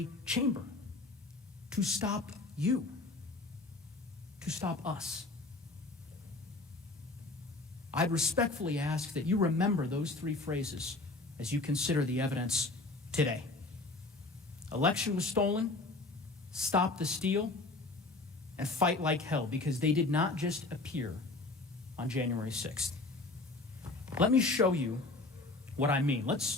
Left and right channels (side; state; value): right; quieter; 3.2 dB